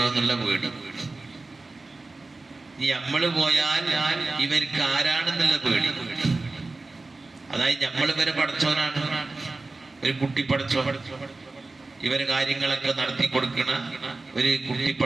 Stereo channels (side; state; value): left; quieter; 3.4 dB